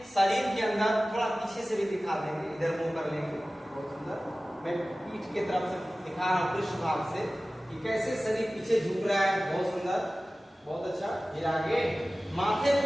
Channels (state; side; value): normal; both; correlation 0.97